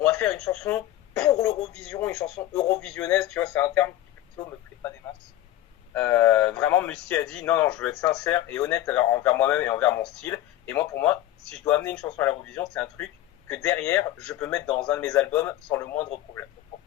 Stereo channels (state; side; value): quieter; right; 14.0 dB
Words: va faire une chanson pour l'Eurovision, une chanson eurovisionnaise, tu vois, c'est un terme qui plutôt me plaît pas des masses. Vraiment, Musti a dit non, je veux être sincère et honnête envers moi-même et envers mon style. Et moi, pour moi, si je dois amener une chanson à l'Eurovision, c'est un truc que derrière, je peux mettre dans un de mes albums sans le moindre problème. Donc, pour